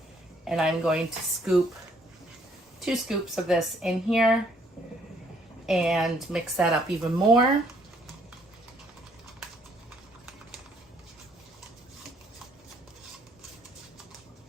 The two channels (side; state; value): both; normal; correlation 0.66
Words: and I'm going to scoop 2 scoops of this in here and mix that up even more.